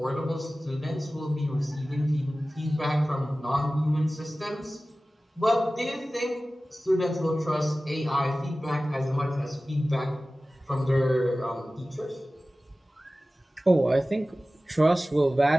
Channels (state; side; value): normal; both; correlation 0.96